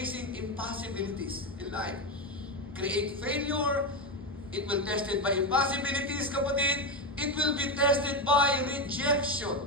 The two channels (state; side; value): normal; both; correlation 0.12